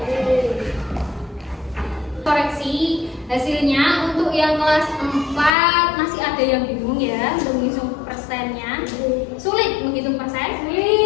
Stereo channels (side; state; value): right; drops out; at 5.5 s